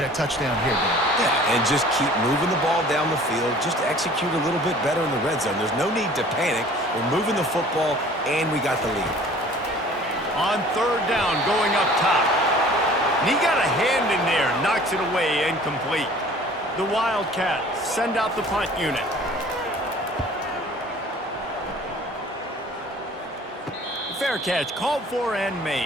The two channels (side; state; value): both; normal; correlation 0.49